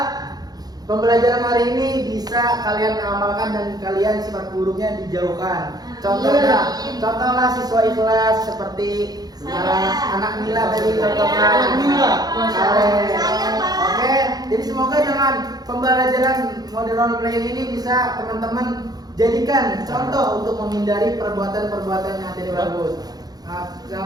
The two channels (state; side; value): late; left; 0.19 ms